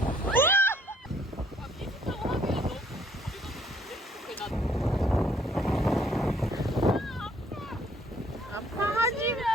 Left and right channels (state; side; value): normal; both; correlation 0.64